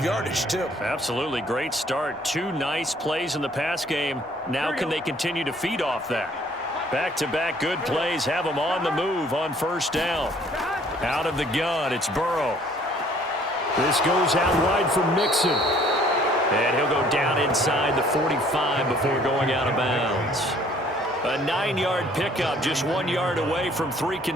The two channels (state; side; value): normal; both; correlation 0.58